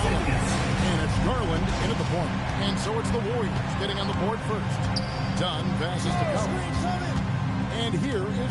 And it's Garland in at the point. And so it's the Warriors getting on the board first. Dunn passes to Collins. And here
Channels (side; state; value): both; identical; correlation 1.00